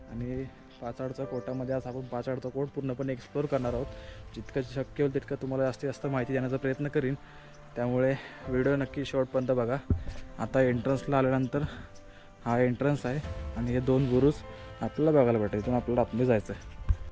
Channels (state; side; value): identical; both; correlation 1.00